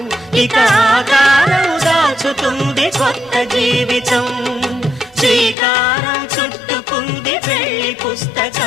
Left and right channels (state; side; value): drops out; right; at 5.6 s